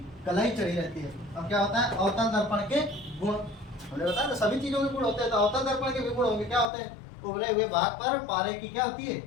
कलाई चढ़ी रहती है। अब क्या होता है, अवतल दर्पण के गुण हमने बताया, तो सभी चीजों के गुण होते हैं, तो अवतल दर्पण के भी गुण होंगे। क्या होते हैं, उभरे हुए भाग पर पारे की क्या होती है,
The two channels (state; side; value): drops out; right; at 6.7 s